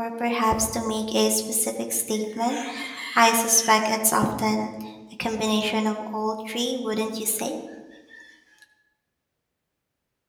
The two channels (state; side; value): identical; both; correlation 1.00